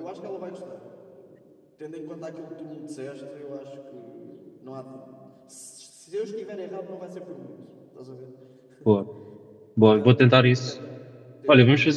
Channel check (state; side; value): identical; both; correlation 1.00